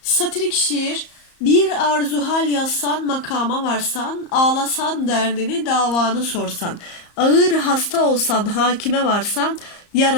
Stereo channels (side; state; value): right; late; 34 ms